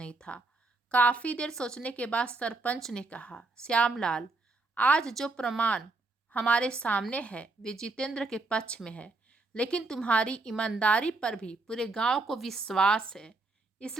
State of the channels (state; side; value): quieter; left; 3.3 dB